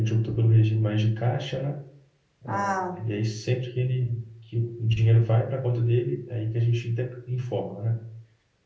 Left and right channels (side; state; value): both; identical; correlation 1.00